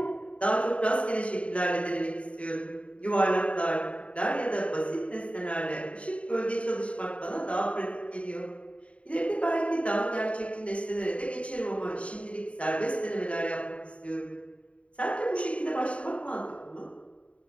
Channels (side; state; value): right; late; 0.063 ms